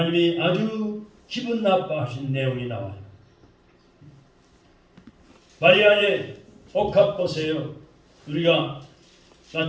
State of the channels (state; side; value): identical; both; correlation 1.00